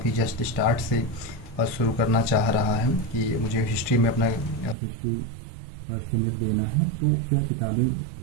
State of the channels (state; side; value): drops out; left; at 4.8 s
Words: जस्ट स्टार्ट से शुरू करना चाह रहा है कि मुझे हिस्ट्री में अपना हिस्ट्री सेनेट देना है, तो क्या किताबें